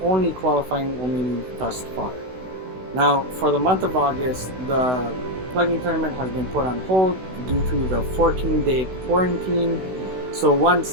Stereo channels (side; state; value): left; late; 16 ms